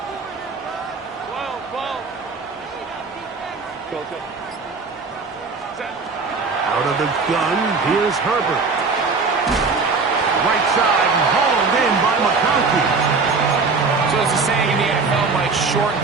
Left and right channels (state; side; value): quieter; left; 4.4 dB